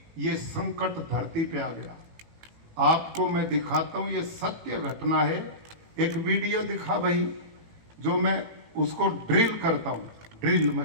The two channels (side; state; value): left; late; 18 ms